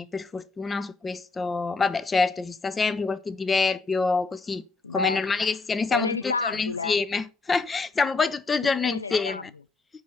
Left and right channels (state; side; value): quieter; right; 3.9 dB